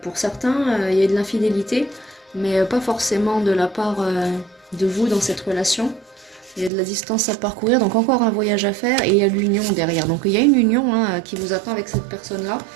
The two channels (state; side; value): drops out; left; at 6.7 s